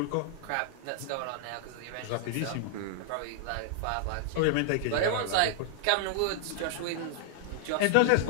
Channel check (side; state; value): both; different; correlation 0.00